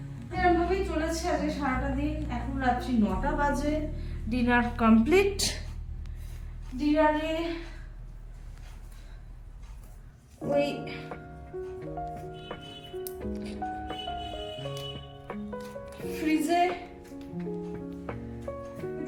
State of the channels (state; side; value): identical; both; correlation 1.00